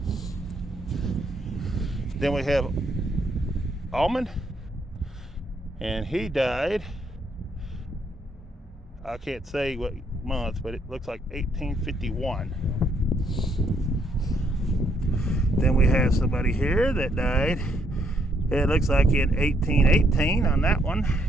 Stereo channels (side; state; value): both; normal; correlation 0.72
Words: Then we have Almond, and he died, I can't say what month, but it looks like 1851. Then we have somebody here that died, it looks like in 1818 on that one,